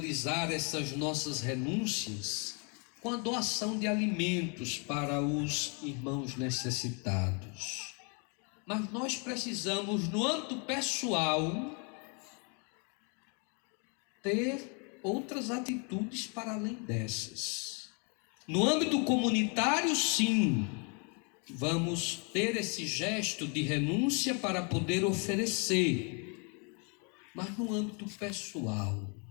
essas nossas renúncias com a doação de alimentos para os irmãos necessitados. Mas nós precisamos, no âmbito pessoal, ter outras atitudes para além dessas. No âmbito comunitário, sim, vamos ter esse gesto de renúncia para poder oferecer. Mas no âmbito pessoal,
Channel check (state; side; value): quieter; right; 36.0 dB